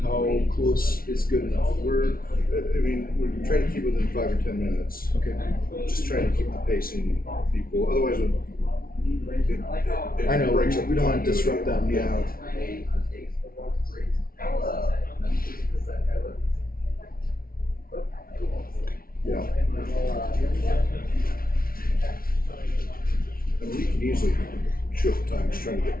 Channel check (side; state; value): right; late; 0.43 ms